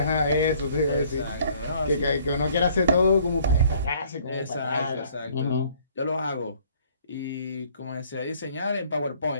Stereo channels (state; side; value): inverted; both; correlation -0.59